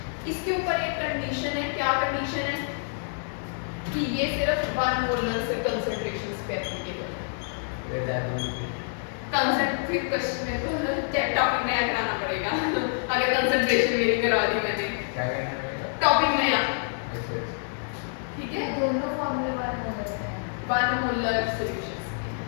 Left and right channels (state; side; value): silent; right; 60 dB below the other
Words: इसके ऊपर एक कंडीशन है, क्या कंडीशन है? कि ये सिर्फ 1 मोलर से कंसंट्रेशन पे एप्लीकेबल है। कंसंट्रेट क्वेश्चन में तो टॉपिक नया कराना पड़ेगा अगर कंसंट्रेशन मेरी करवा दी मैंने, क्या करना पड़ेगा? टॉपिक नया, अच्छा ठीक है। दोनों फॉर्मूले वाले हो जाते हैं। 1 मोलर सॉल्यूशंस,